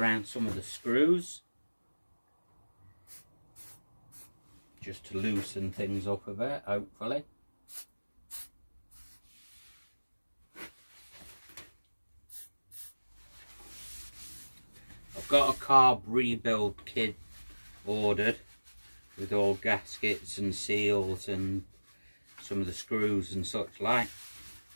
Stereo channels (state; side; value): inverted; both; correlation -1.00